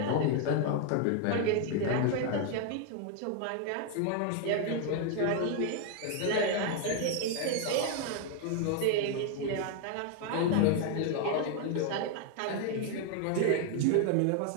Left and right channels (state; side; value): different; both; correlation 0.00